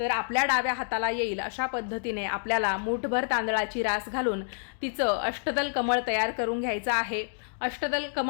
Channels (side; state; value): right; silent; digital silence